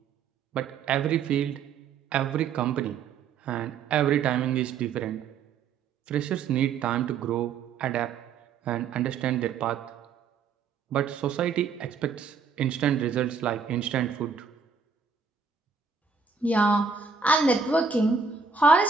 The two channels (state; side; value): quieter; left; 5.6 dB